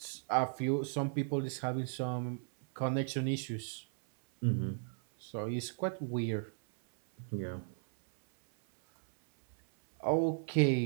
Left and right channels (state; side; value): silent; left; 54 dB below the other